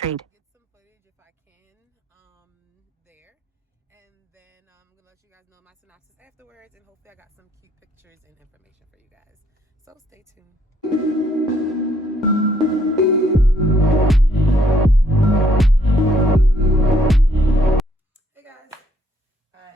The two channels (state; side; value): normal; both; correlation 0.68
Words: Get some footage if I can there. And then I'm going to let you guys know my synopsis afterwards. And hopefully I got some cute pictures and information for you guys. So stay tuned.